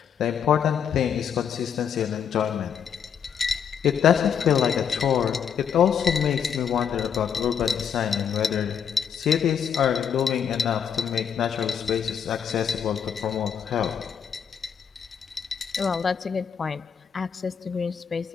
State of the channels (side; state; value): right; quieter; 7.7 dB